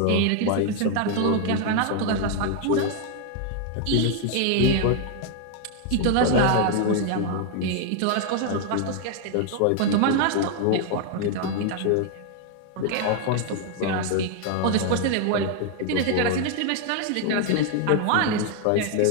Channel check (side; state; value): both; different; correlation 0.00